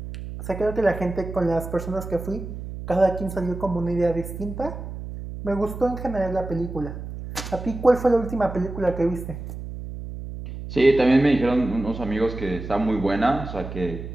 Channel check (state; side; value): noise; right; hum, 9 dB below the sound